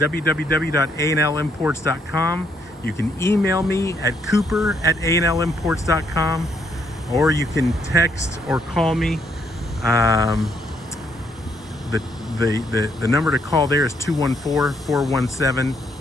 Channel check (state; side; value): normal; both; correlation 0.72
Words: You can email me at cooper@anlimports.com, or you can text or call me. The number to call there is